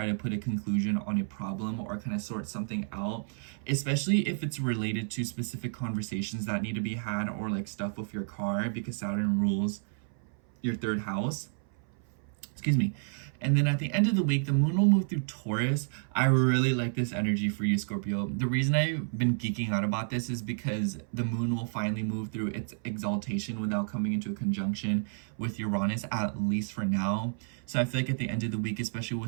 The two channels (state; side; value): silent; left; 57 dB below the other